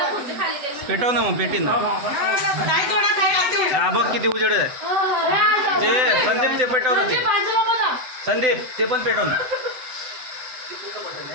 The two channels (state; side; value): late; left; 7.9 ms